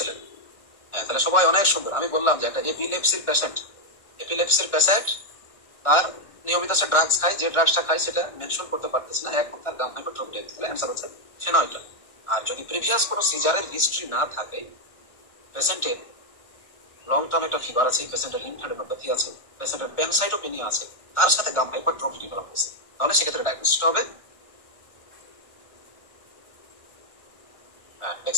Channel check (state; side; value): late; right; 1.6 ms